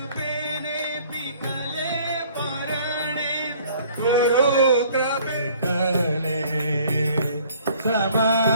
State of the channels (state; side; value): inverted; both; correlation -0.55